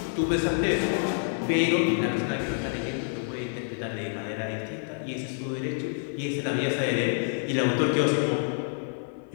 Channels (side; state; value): right; silent; 57 dB below the other